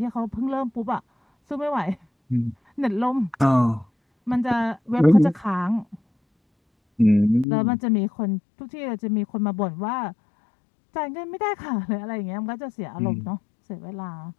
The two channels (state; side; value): drops out; right; at 7.5 s